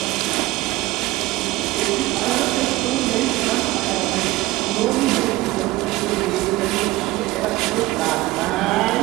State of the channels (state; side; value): quieter; left; 18.9 dB